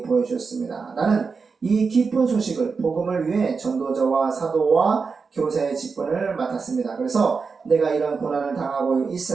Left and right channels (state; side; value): quieter; left; 5.0 dB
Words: 보여주셨습니다. 나는 이 기쁜 소식을 복음을 위해 전도자와 사도와 교사의 직분을 맡았습니다. 그래서 내가 이런 고난을 당하고